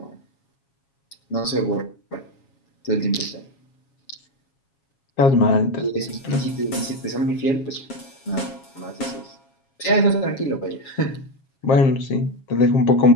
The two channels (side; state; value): right; late; 7.3 ms